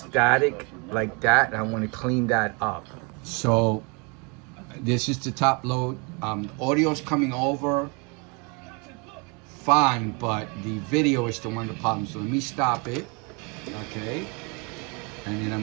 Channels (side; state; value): left; quieter; 32.0 dB